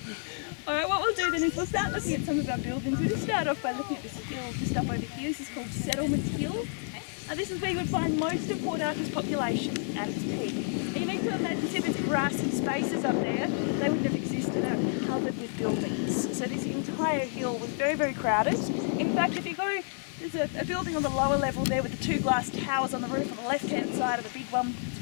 Alright, what we'll do then is we'll start looking at some of our buildings. We'll just start off by looking at this hill just up over here. This is called Settlement Hill. This is where you would find most of Port Arthur's population at its peak. And you need to imagine, see these grassy spaces up there, they wouldn't have existed, they were covered with buildings. So this entire hill was very, very crowded. In fact, if you go, there's a building on the lower level there with the 2 glass towers on the roof on the left-hand side of the big one, it's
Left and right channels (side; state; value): right; silent; 58 dB below the other